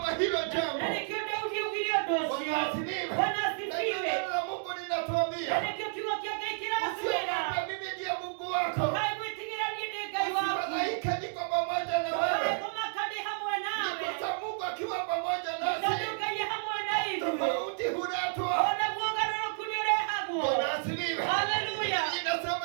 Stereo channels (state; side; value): silent; left; digital silence